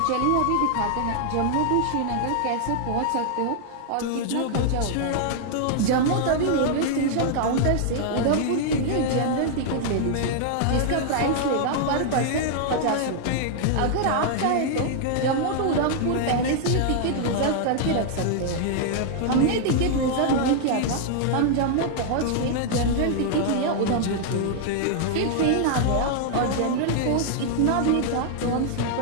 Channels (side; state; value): both; different; correlation -0.01